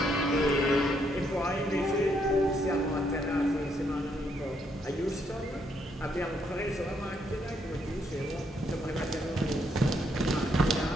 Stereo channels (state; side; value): normal; both; correlation 0.74